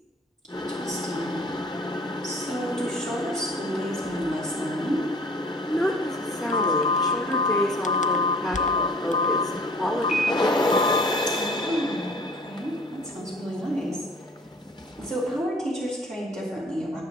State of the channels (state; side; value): normal; both; correlation 0.49